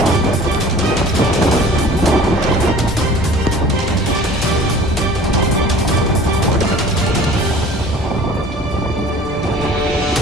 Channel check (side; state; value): both; normal; correlation 0.46